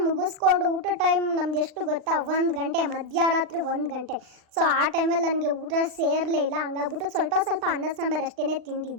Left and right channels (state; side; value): late; left; 39 ms